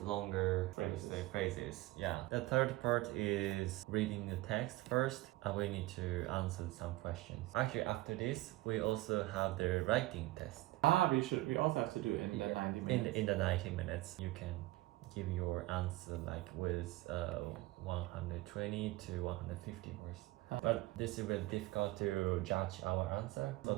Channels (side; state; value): left; quieter; 18.5 dB